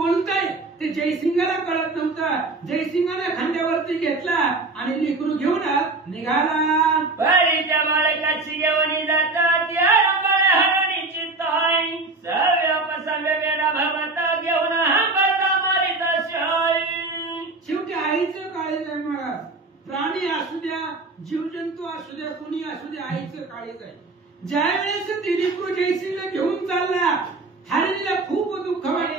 ते जयसिंगाला कळत नव्हतं. जयसिंगाने खांद्यावरती घेतला आणि लेकरू घेऊन निघाला. त्या बाळकाची घेऊन जातात हरणीची ताई सव्या भगवता घेऊन मारित शाळी. शेवटी आईचं काळीज आहे महाराज. प्राणी असू द्या, जीवजंतू असू द्या, कुणी असू द्या, आईचं काळीज आहे. ज्या वेळेस ती लेकरू जयसिंगला घेऊन चालला, हरणीला खूप दुःख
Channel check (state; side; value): quieter; left; 3.4 dB